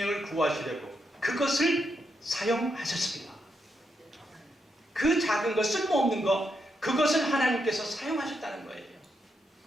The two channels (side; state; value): both; normal; correlation 0.82